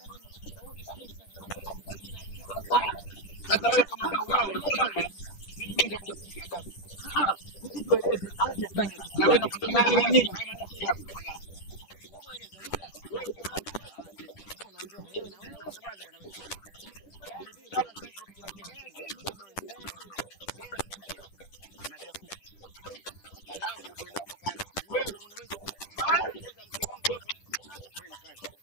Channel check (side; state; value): right; late; 10 ms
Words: Tofauti kabisa. Sasa hivi kajipa jina ajiita bau wao. Sasa wewe kama bau wao, sio bwana? Mimi nitakuja kukutia adabu. Sisi tueleze amefanya kitu gani? Na wewe nakwambia amefanya nini? Haya maneno si yako tafadhali. Sio mueleza umma. Wewe sio yako. Sema. Sasa unaombewa wewe na wewe. Tafadhali bwana wewe. Vijana sasa hivi tunapigana tena. Taratibu jamani, taratibu jamani. Mavya kuku. Alafu ndo ninakupa wewe unaweza kuongoza mke wangu wewe. Wewe nikae kwanza.